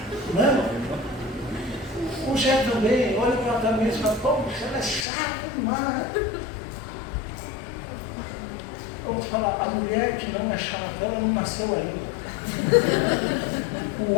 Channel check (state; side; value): drops out; right; at 5.1 s